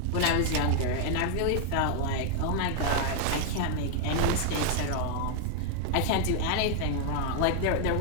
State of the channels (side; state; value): both; different; correlation 0.00